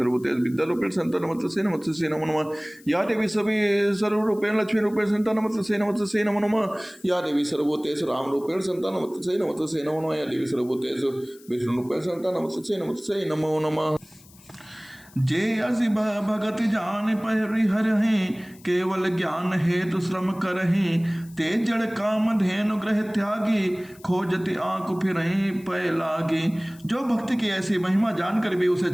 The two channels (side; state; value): left; noise; hiss, 25 dB below the sound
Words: विद्यारूपेण संस्थिता नमस्तस्यै नमस्तस्यै नमो नमः। या देवी सभी सर्वरूपेण लक्ष्मी रूपेण संस्थिता नमस्तस्यै नमस्तस्यै नमो नमः। या देवी सर्वभूतेषु राम रूपेण संस्थिता नमस्तस्यै नमस्तस्यै नमो नमः। या देवी सर्वभूतेषु विष्णु रूपेण संस्थिता नमस्तस्यै नमस्तस्यै नमो नमः। जे असी भगत जान परिहरहि केवल ज्ञान हेतु श्रम करहि ते जड़ काम धेनु ग्रह त्यागी खोजति आंख फिरहि पय लागी। जो भक्ति की ऐसी महिमा जानकर भी उसे